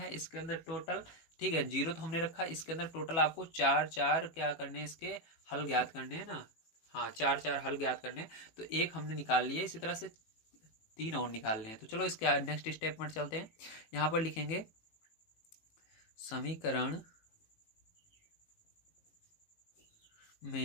इसके अंदर टोटल, ठीक है, 0 तो हमने रखा, इसके अंदर टोटल आपको 4 क्या करने हैं, इसके हल ज्ञात करने हैं ना। हाँ, 4 हल ज्ञात करने हैं। तो एक हमने निकाल लिया, इसी तरह से 3 और निकालने हैं। तो चलो इसके नेक्स्ट स्टेप पर चलते हैं। यहाँ पर लिखेंगे समीकरण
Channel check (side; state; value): right; late; 18 ms